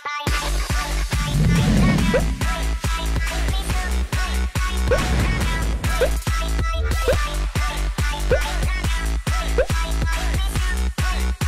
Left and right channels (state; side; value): identical; both; correlation 1.00